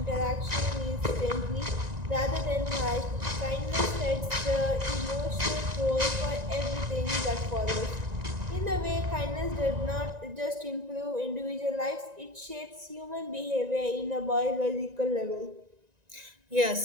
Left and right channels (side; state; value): left; late; 1.9 ms